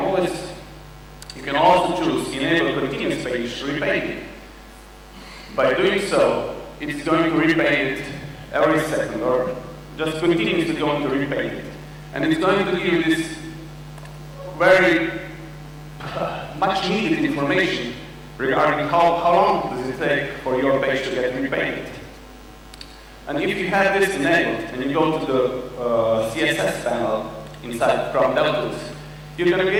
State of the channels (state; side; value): identical; both; correlation 1.00